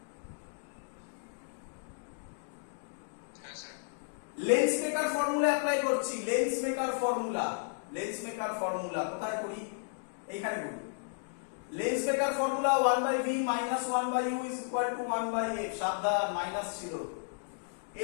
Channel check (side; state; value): right; silent; digital silence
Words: Lens maker formula apply করছি। Lens maker formula, lens maker formula কোথায় করি? এইখানে করি। Lens maker formula 1/v minus 1/u is equal to 1/f। সাবধান, minus ছিল।